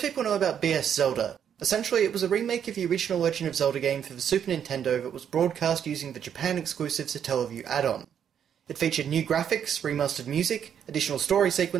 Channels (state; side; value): quieter; left; 8.6 dB